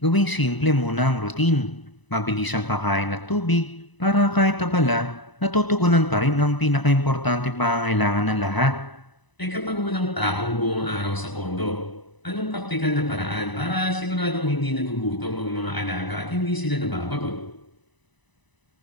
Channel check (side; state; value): right; late; 1.0 ms